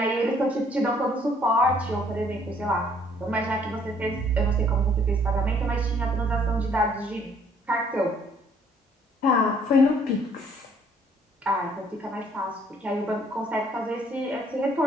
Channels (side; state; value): both; normal; correlation 0.62